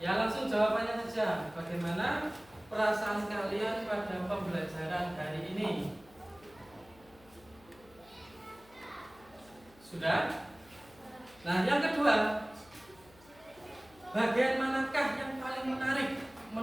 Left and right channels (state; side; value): noise; left; hum, 26 dB below the sound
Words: langsung jawabannya saja. Bagaimana perasaan kalian pada pembelajaran hari ini? Sudah? Nah, yang kedua, bagian manakah yang paling menarik